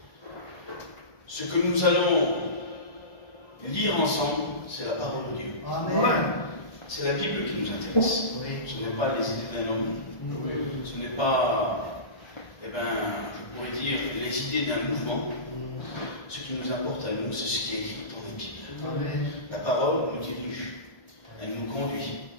ce que nous allons lire ensemble, c'est la parole de Dieu. Amen. C'est la Bible qui nous intéresse. Ce n'est pas les idées d'un homme. Ce n'est pas, je pourrais dire, les idées d'un mouvement. Ce qui nous importe à nous, c'est ce qui est écrit dans la Bible. Amen. La parole nous dirige. Elle nous conduit.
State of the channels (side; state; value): right; late; 1.9 ms